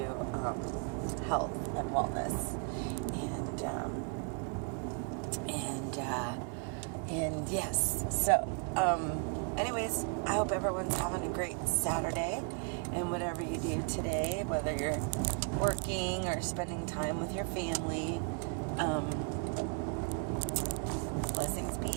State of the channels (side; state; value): left; quieter; 33.7 dB